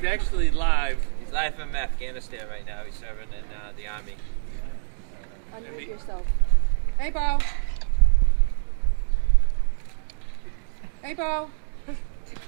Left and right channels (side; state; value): left; silent; digital silence